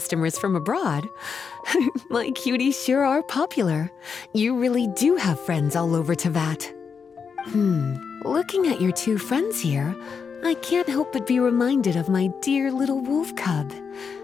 from abroad. My cuties sure are popular. You really do have friends all over Teyvat. Looking at your two friends here, I can't help but be reminded of my dear little wolf cub.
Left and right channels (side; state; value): right; quieter; 6.0 dB